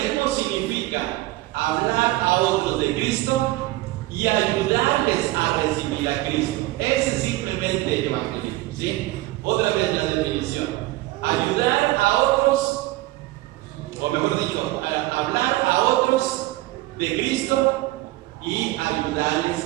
significa hablar a otros de Cristo y ayudarles a recibir a Cristo. Ese es simplemente evangelismo, ¿sí? Otra vez la definición. Ayudar a otros, o mejor dicho, hablar a otros de Cristo y ayudarles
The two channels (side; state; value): left; quieter; 18.6 dB